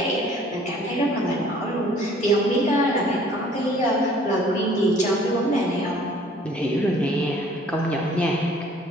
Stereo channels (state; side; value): normal; both; correlation 0.55